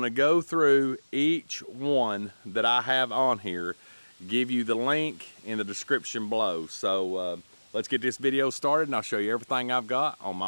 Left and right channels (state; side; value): inverted; both; correlation -1.00